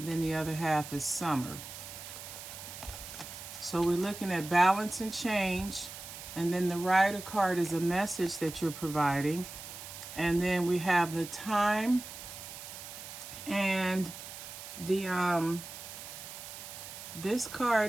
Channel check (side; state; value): right; noise; hiss, 11 dB below the sound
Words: then the other half is summer. So we're looking at balance and change, and then the Rider card is a message that you're providing. And then we have the time and the this